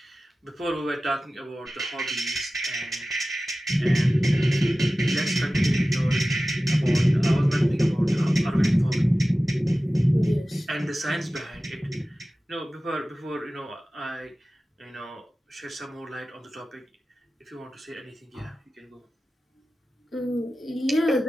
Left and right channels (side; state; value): both; normal; correlation 0.95